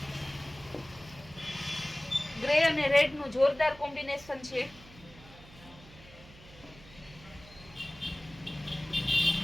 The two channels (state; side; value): noise; right; hum, 21 dB below the sound